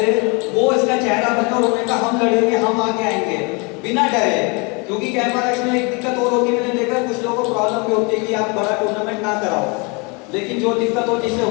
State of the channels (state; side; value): quieter; right; 30.9 dB